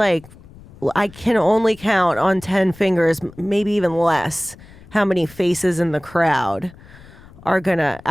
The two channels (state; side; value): noise; left; rumble, 22 dB below the sound